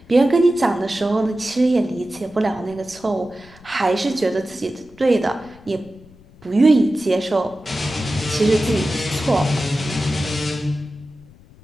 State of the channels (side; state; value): left; noise; rumble, 24 dB below the sound